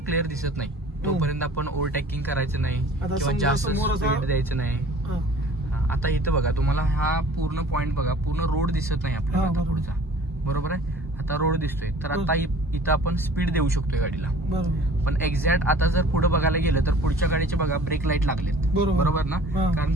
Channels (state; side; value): normal; both; correlation 0.48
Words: क्लिअर दिसत नाही तोपर्यंत आपण ओव्हरटेकिंग करायचं नाही किंवा जास्त स्पीड द्यायचं नाही. आता इथं बघा, तुम्हाला हा पूर्ण पॉइंट बघा, पूर्ण रोड दिसत नाही आपल्याला आता पुढचा, बरोबर आहे. आता रोड दिसतोय, तर आता इथं आपण स्पीड देऊ शकतोय गाडीला. पण एक्झॅक्ट आता जर पुढे बघायला गेलं तर पुढच्या गाडीचे बघा ब्रेक लाईट लागलेत, बरोबर ना. कारण